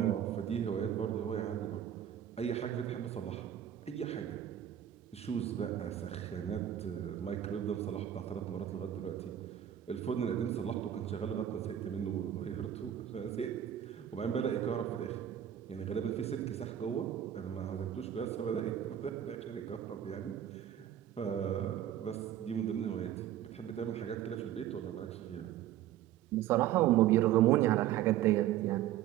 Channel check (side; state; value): left; quieter; 11.1 dB